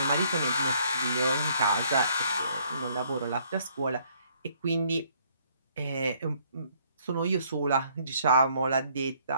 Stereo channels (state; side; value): inverted; both; correlation -0.65